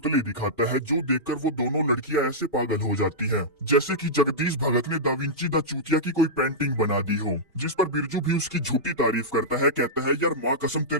दिखाता है, जो देखकर वो दोनों लड़कियां ऐसे पागल हो जाती हैं, जैसे कि जगदीश भगत ने दा विंची द चूतिया की कोई पेंटिंग बना दी हो। जिस पर बिरजू भी उसकी झूठी तारीफ करता है, कहता है यार माँ कसम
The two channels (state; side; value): normal; both; correlation -0.11